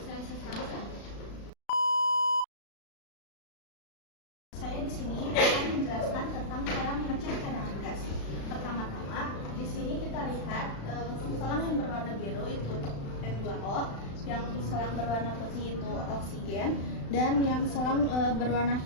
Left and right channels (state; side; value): late; right; 36 ms